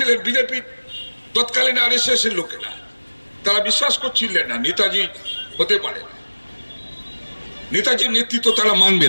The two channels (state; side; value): inverted; both; correlation -1.00